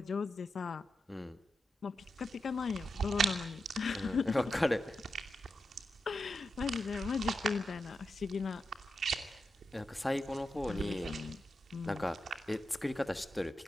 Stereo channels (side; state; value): both; normal; correlation 0.88